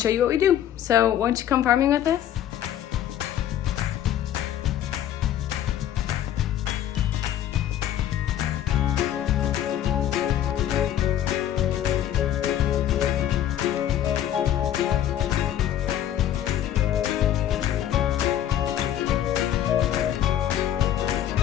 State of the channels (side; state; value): right; quieter; 11.1 dB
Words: you what we do. So why don't you come farming with us?